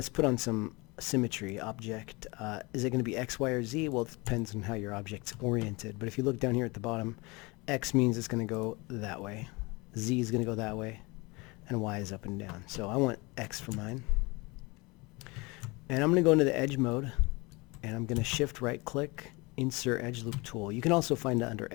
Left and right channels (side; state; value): right; quieter; 25.6 dB